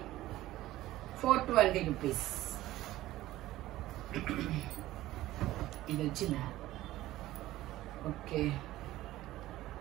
420 rupees. ఇది వచ్చిందా? ఓకే.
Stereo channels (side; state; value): left; quieter; 15.8 dB